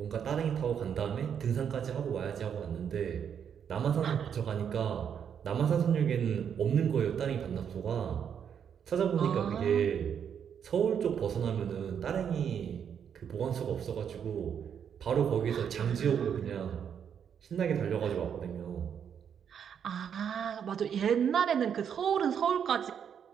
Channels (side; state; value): left; quieter; 8.0 dB